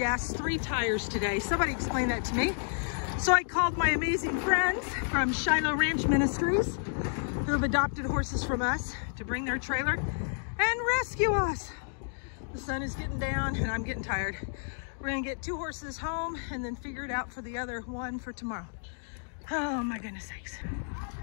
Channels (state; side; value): silent; right; digital silence